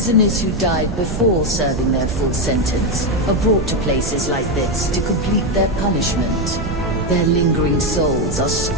who died before serving their full sentence are brought to places like this to complete their punishment. Their lingering souls are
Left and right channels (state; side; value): noise; right; rumble, 5 dB below the sound